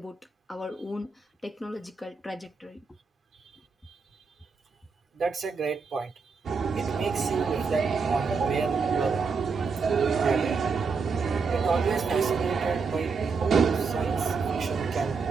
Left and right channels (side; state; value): left; quieter; 5.0 dB